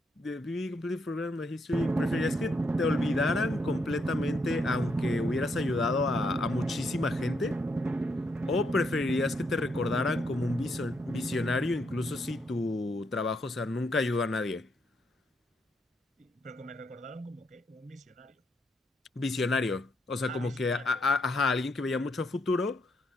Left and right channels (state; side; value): normal; both; correlation 0.77